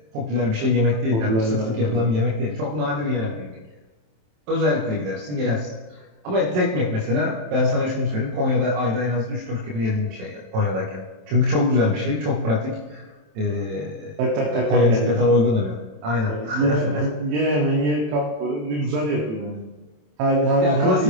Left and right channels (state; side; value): late; left; 27 ms